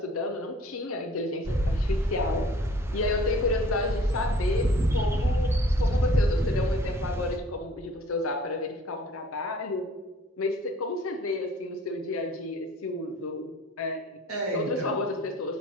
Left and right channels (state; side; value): normal; both; correlation 0.52